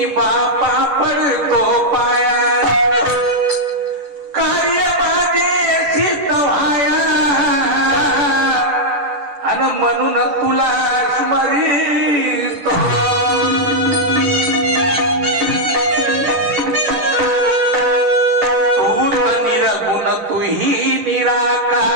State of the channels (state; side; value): late; left; 10 ms